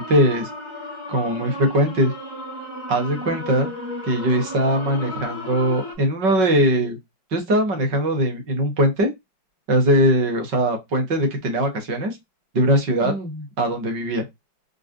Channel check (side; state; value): left; late; 5.3 ms